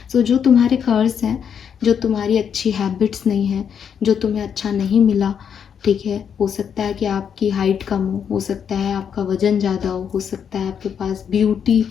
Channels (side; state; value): right; quieter; 7.7 dB